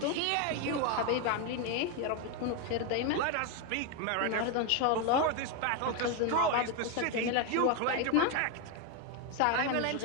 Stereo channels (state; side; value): different; both; correlation 0.02